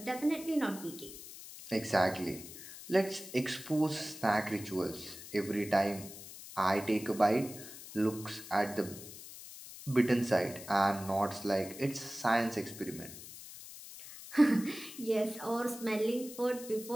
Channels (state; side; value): noise; left; hiss, 14 dB below the sound